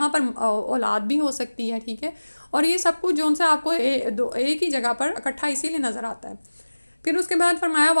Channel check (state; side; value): inverted; both; correlation -1.00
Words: پر اولاد بھی ہو سکتی ہے. ٹھیک ہے، اور یہ سب کچھ جو ان سے آپ کو ایک ہی جگہ پر اکٹھا اسی لیے نظر آتا ہے. پھر اس کے بعد فرمایا